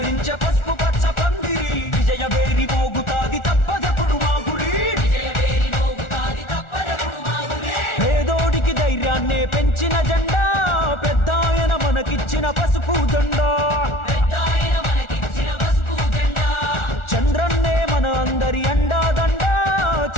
పసుపు పచ్చ పందిరి విజయ వేరి మోగుతాది తప్పదప్పుడు మా గురి పేదోడికి ధైర్యాన్నే పెంచిన జెండా పెద్దాయన మనకిచ్చిన పసుపు జెండా చంద్రన్నే మన అందరి అండా దండా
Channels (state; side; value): late; right; 1.4 ms